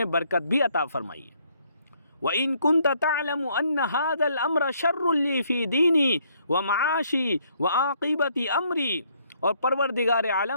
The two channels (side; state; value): both; inverted; correlation -0.68